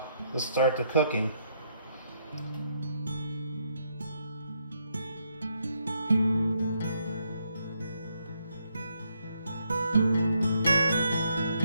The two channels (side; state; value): both; inverted; correlation -0.75